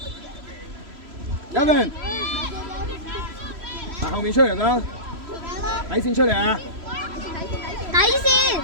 Gavin，後面出嚟啦，底線出嚟啊！底線。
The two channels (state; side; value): late; left; 3.0 ms